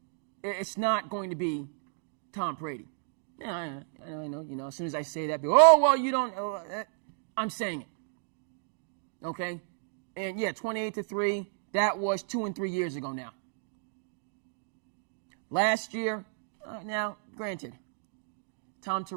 It's not going to be Tom Brady. Yeah, I know. As soon as I say that, people, oh, well, you don't. I'm saying it. Okay? And, yeah, 28-3, that was 2 and 3 years ago now. Last year, now, granted, Tom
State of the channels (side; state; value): left; silent; digital silence